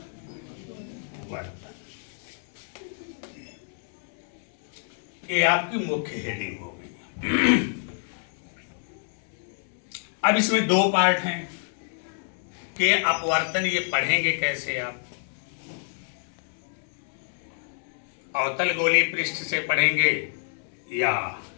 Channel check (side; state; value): right; silent; 60 dB below the other